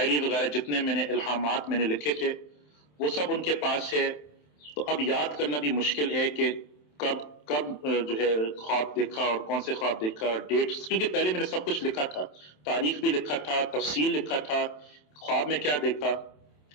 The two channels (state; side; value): late; right; 27 ms